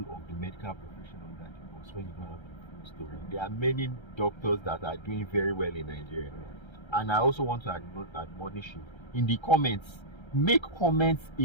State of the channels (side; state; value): right; late; 1.3 ms